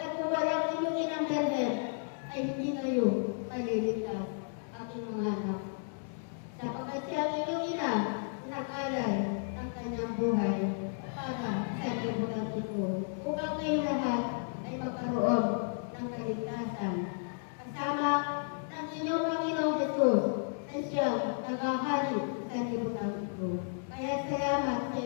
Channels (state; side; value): silent; right; digital silence